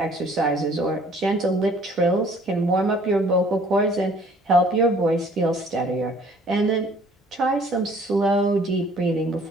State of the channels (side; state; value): both; normal; correlation 0.56